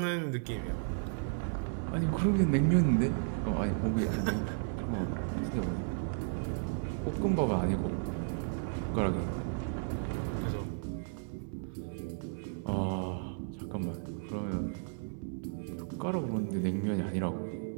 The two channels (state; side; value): silent; left; 55 dB below the other